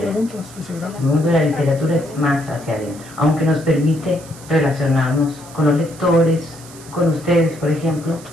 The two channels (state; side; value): noise; right; hiss, 19 dB below the sound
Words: El mundo de la literatura es más hacia adentro, aunque nos permite relacionarnos con los lectores, con ustedes, por ejemplo,